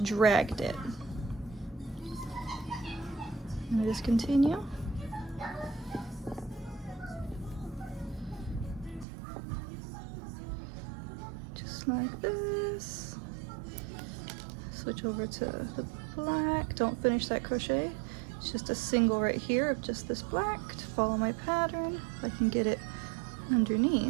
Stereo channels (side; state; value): left; drops out; at 9.1 s